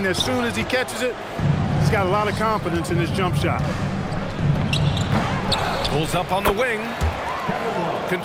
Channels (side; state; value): both; identical; correlation 1.00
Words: as soon as he catches it. He's got a lot of confidence in his jump shot. Pulls up on the wing.